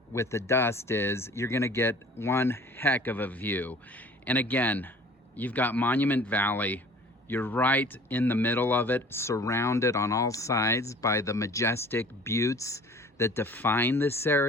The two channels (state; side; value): normal; both; correlation 0.48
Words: with the dust is you're gonna get one heck of a view. And again, you've got Monument Valley. You're right in the middle of it, surrounded on all sides by the majestic buttes that define this